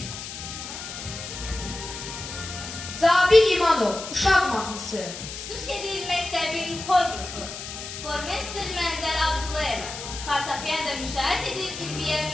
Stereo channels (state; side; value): noise; left; hiss, 9 dB below the sound